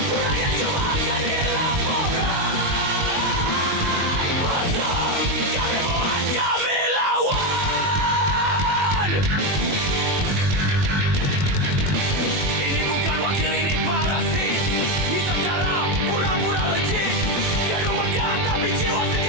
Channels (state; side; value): late; left; 21 ms